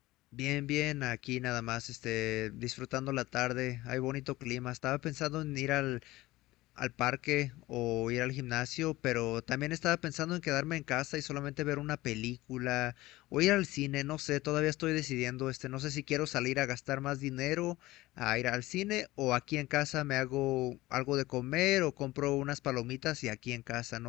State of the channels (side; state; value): right; quieter; 18.5 dB